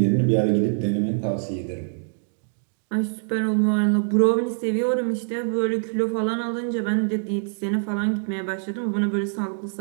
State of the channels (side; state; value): left; silent; digital silence